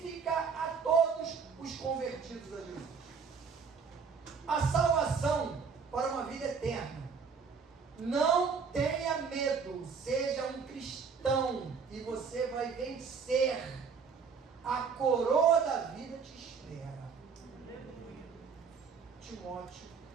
a todos os convertidos a Jesus. A salvação para uma vida eterna. Não tenha medo, seja um cristão e você vai vencer. A coroa da vida te espera. Timóteo,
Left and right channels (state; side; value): quieter; left; 5.7 dB